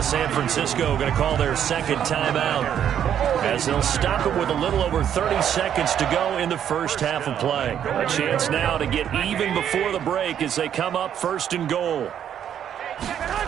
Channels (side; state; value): left; quieter; 9.5 dB